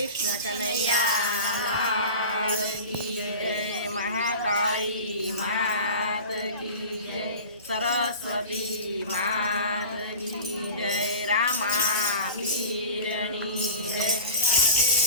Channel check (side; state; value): both; inverted; correlation -0.35